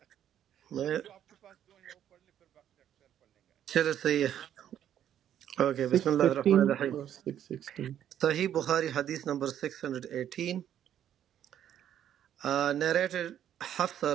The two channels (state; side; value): quieter; left; 10.4 dB